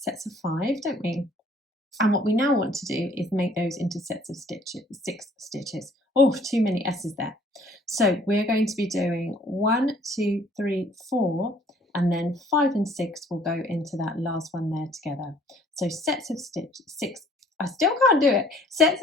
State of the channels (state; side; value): normal; both; correlation 0.58